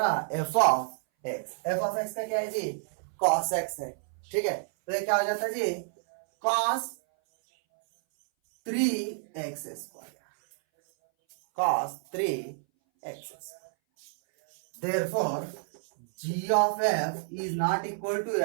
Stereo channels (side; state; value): left; silent; 58 dB below the other